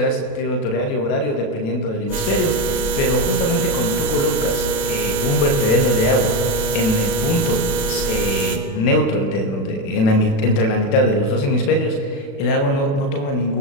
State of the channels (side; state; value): right; late; 36 ms